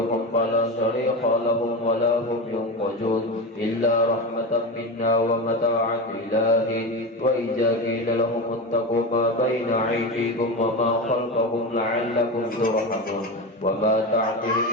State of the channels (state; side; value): normal; both; correlation 0.20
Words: فلا صريخ لهم ولا هم ينقذون إلا رحمة منا ومتاعا إلى حين. وإذا قيل لهم اتقوا ما بين أيديكم وما خلفكم لعلكم ترحمون. وما تعطيهم